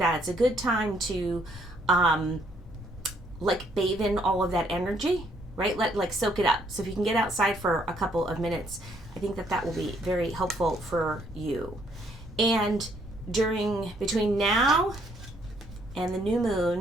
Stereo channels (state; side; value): normal; both; correlation 0.68